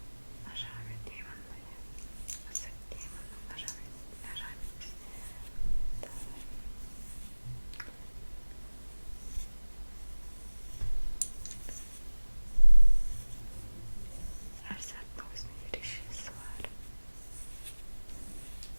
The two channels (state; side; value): inverted; both; correlation -1.00